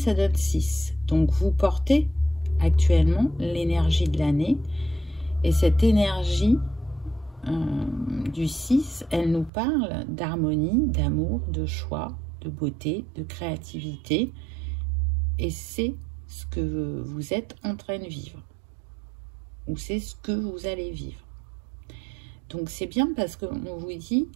donne 6. Donc vous portez actuellement l'énergie de l'année et cette énergie du 6, elle nous parle d'harmonie, d'amour, de choix, de beauté, de créativité. Et c'est ce que vous êtes en train de vivre. Ou c'est ce que vous allez vivre. Donc c'est bien parce qu'on vous dit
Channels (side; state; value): left; drops out; at 9.5 s